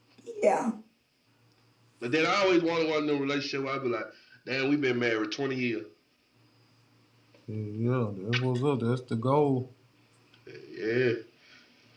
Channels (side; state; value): both; identical; correlation 1.00